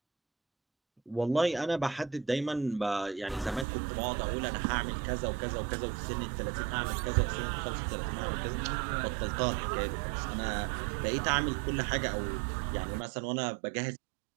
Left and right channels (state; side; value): drops out; left; at 3.7 s